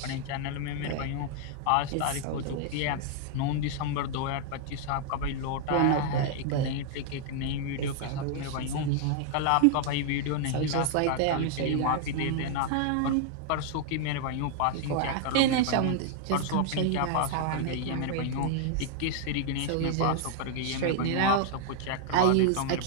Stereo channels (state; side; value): different; both; correlation 0.00